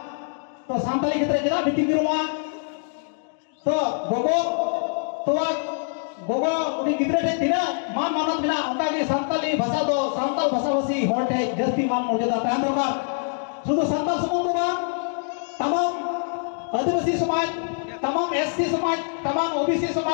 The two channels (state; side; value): silent; right; 60 dB below the other